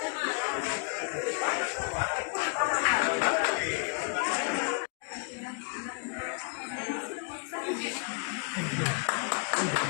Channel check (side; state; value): right; quieter; 39.4 dB